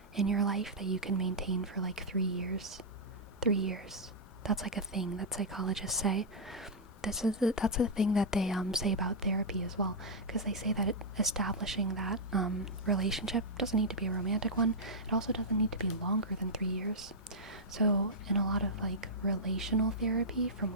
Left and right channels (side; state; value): both; normal; correlation -0.07